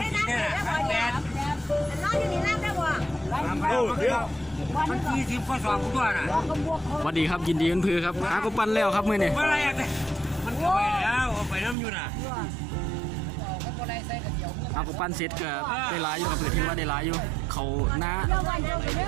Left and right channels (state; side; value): drops out; left; at 11.8 s